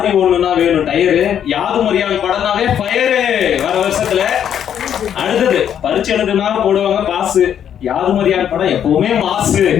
ஒண்ணுனா வேணும் டயரு, யாதும் அறியான் படம்னாவே ஃபயரு வர வருஷத்துல. அடுத்தது பரிச்சு எழுதுனா போடுவாங்க பாசு, யாதும் அறியான் படம் எப்பவுமே மாசு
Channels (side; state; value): right; quieter; 9.3 dB